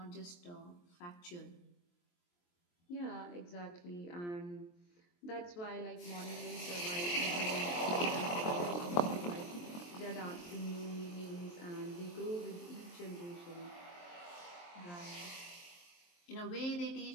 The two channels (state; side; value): late; right; 23 ms